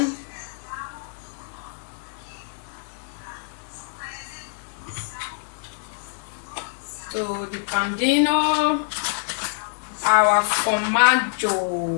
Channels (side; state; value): right; silent; digital silence